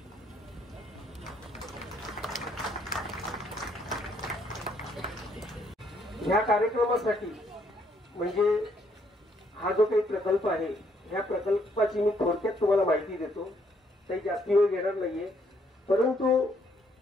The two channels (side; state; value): both; normal; correlation 0.69